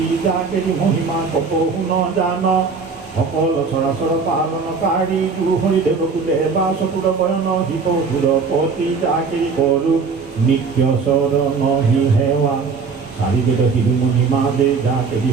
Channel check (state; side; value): quieter; left; 5.0 dB